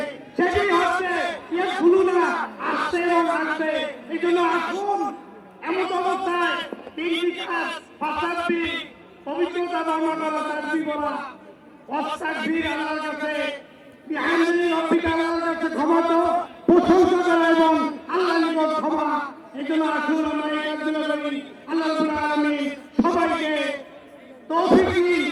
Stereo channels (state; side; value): identical; both; correlation 1.00